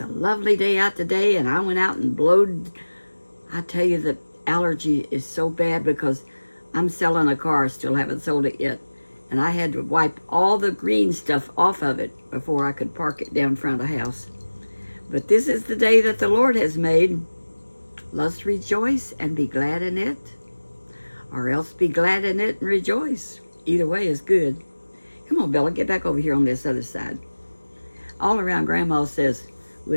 a lovely day out today, and I went out and blowed. I tell you, the allergy is so bad because I'm selling a car, still haven't sold it yet. And I had to wipe all the green stuff off of it before I could park it down front of the house. But this is the day that the Lord has made. Let's rejoice and be glad in it, or else be glad in it and rejoice. Either way is good. Come on, Bella, get back over here on this other side. All around Grandma says,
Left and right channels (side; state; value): both; inverted; correlation -1.00